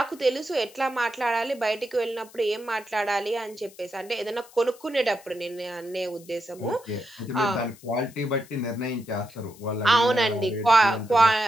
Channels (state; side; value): noise; left; hiss, 23 dB below the sound